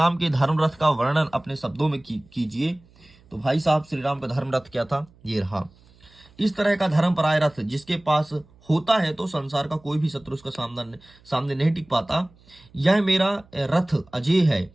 के धर्म रथ का वर्णन अपने शब्दों में कीजिए। तो भाई साहब श्री राम का धर्म रथ क्या था, ये रहा। इस तरह का धर्मपराय रथ जिसके पास होता है तो संसार का कोई भी शत्रु उसका सामने नहीं टिक पाता। यह मेरा रथ अजय है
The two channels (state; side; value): noise; right; hum, 29 dB below the sound